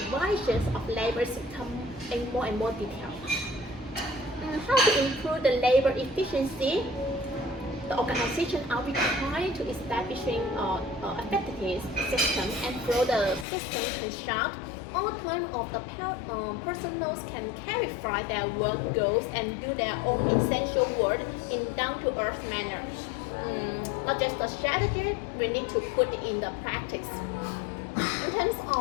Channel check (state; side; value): drops out; right; at 13.5 s